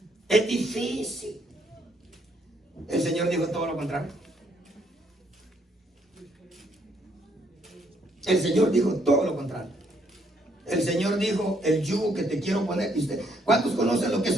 es difícil. El Señor dijo todo lo contrario. El Señor dijo todo lo contrario. El Señor dijo, el yugo que te quiero poner. ¿Y usted, cuántos conocen lo que es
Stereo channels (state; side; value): normal; both; correlation 0.70